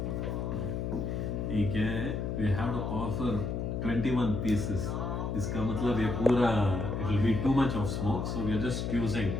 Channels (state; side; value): noise; left; hum, 2 dB below the sound